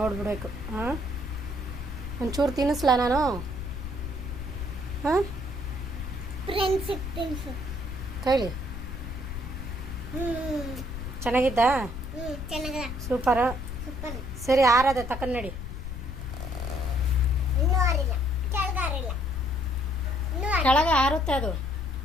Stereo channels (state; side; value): noise; left; rumble, 8 dB below the sound